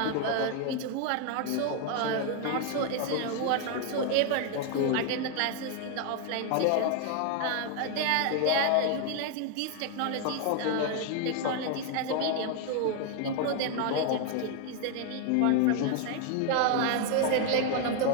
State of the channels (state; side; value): different; both; correlation 0.01